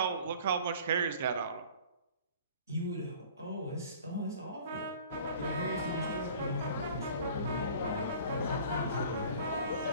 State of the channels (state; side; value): inverted; both; correlation -0.47